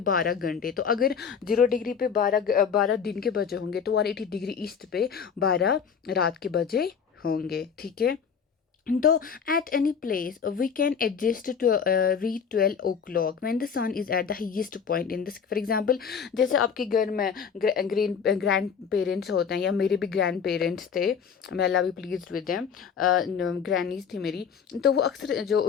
घंटे। तो अगर 0 डिग्री पे 12 दिन के बजे होंगे तो 180 डिग्री ईस्ट पे 12 रात के बजे होंगे, ठीक है। तो at any place we can adjust to read 12 o'clock when the sun is at the highest point in this, for example जैसे आपके घर में ग्रैंड पेरेंट्स होते हैं, या मेरे भी ग्रैंड पेरेंट्स थे, मैं अल्लाह भी प्लीज विद देम, ग्रैनीज थी मेरी। तो वो अक्सर जो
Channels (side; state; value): right; quieter; 6.7 dB